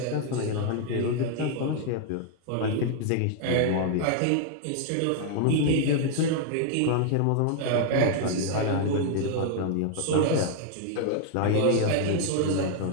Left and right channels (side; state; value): both; different; correlation 0.00